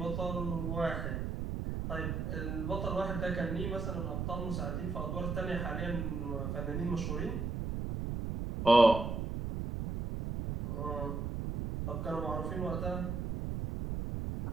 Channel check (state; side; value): noise; right; rumble, 2 dB below the sound